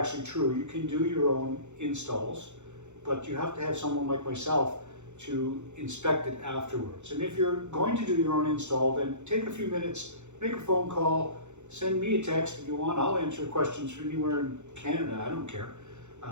true. You can do your own installs, but you have to have someone like myself to inspect it afterwards. And if you're going to do your own install, then take a few minutes, make a phone call, send me a text if you want. I'll answer questions from anywhere in Canada, I don't care.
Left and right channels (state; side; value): late; left; 0.83 ms